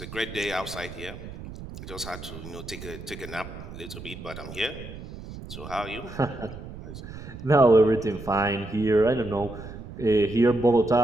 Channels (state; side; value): noise; right; rumble, 12 dB below the sound